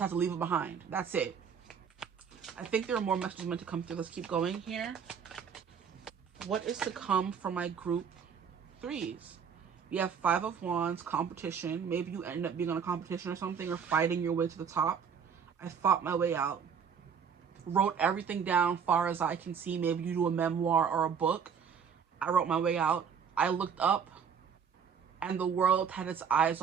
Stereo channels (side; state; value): left; quieter; 7.0 dB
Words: to leave it behind. That's it. I think there are more messages meant to come through. Let's keep going here. What is to come for my group threes? We have Five of Wands, competition. Maybe you end up being on a competition or something, or fighting your way to the top. I fought my way out. Wrote everything down far as I can see. Maybe you do a memoir or a book. I wrote my way out. I looked up and the world had its eyes